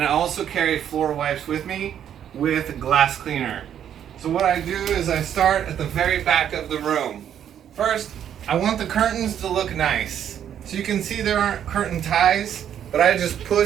I also carry floor wipes with me with glass cleaner. So what I do is I start at the very back of the room. First, I want the curtains to look nice. So you can see there aren't curtain ties, but I just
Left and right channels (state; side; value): quieter; left; 9.6 dB